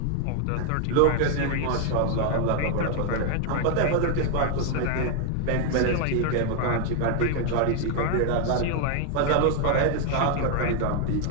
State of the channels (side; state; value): both; different; correlation 0.00